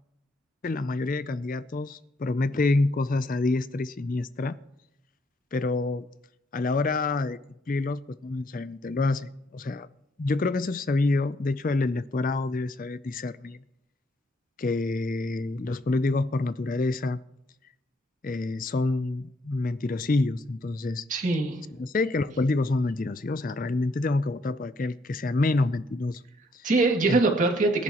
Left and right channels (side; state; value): both; normal; correlation 0.70